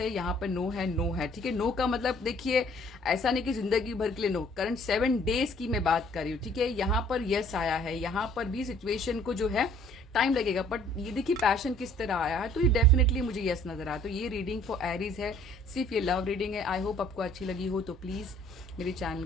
यहाँ पे नो है, ठीक है। नो का मतलब देखिए ऐसा नहीं कि जिंदगी भर के लिए नो, करंट 7 डेज की मैं बात कर रही हूँ, ठीक है। यहाँ पर यस आया है, यहाँ पर भी सिचुएशन को जो है टाइम लगेगा, बट ये देखिए पैशन किस तरह आया है, तो ये डेफिनेटली मुझे यस नजर आया। तो ये रीडिंग फॉर एरीज है, सिर्फ ये लव रीडिंग है। आई होप आपको अच्छी लगी हो, तो प्लीज मेरे चैनल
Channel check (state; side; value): normal; both; correlation 0.57